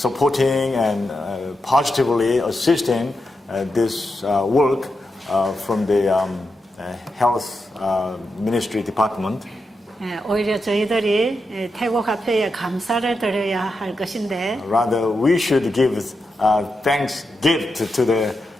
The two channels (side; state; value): both; normal; correlation 0.87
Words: and positively assisting this work from the health ministry department. 예, 오히려 저희들이 태국 화폐에 감사를 드려야 할 것인데 Rather, we should give thanks gift to the